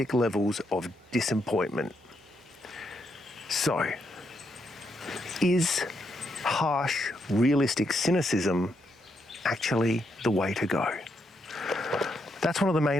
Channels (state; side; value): normal; both; correlation 0.79